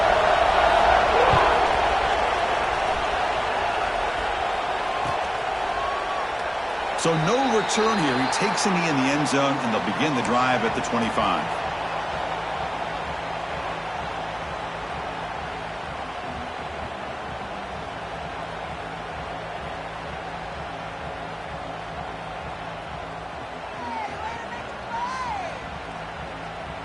So no return here. He takes a knee in the end zone, and they'll begin the drive at the 25.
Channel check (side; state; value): both; identical; correlation 1.00